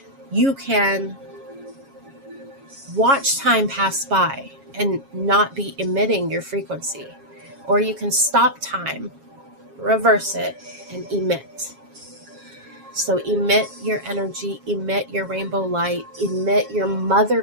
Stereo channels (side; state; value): left; late; 7.3 ms